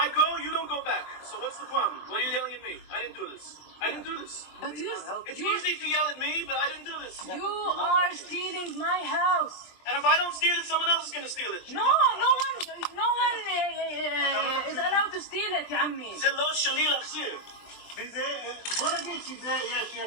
go, you don't go back. So what's the problem? What are you yelling at me? I didn't do this. I didn't do this. But It's easy to yell at me, but I didn't do this. you are stealing my house. And if I don't steal it, someone else is going to steal it. No one is allowed to steal it, يا عمي. זה לא שלי להחזיר. בוא נגיד שזה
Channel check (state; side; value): late; right; 23 ms